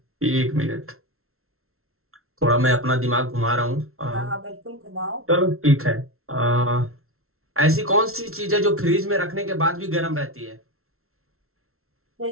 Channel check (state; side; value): late; left; 0.62 ms